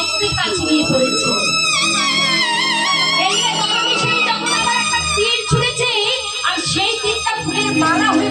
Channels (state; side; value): identical; both; correlation 1.00